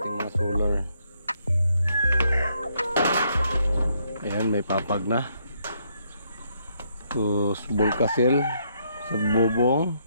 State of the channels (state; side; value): inverted; both; correlation -0.73